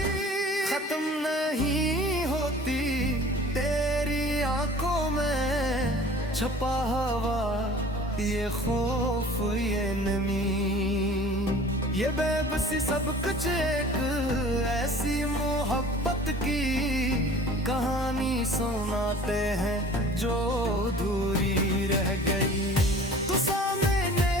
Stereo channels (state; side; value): normal; both; correlation 0.46